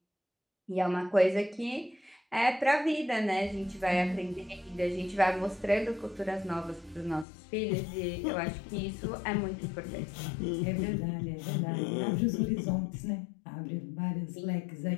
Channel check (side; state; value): right; drops out; at 7.2 s